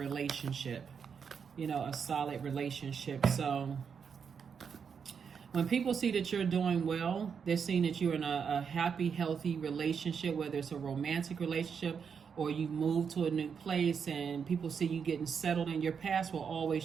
a solid relationship. So when people see that you're doing well, they're seeing that you're in a happy, healthy relationship, whether it's a romantic relationship or you move to a new place and people see you getting settled, and your past will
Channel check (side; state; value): left; quieter; 6.6 dB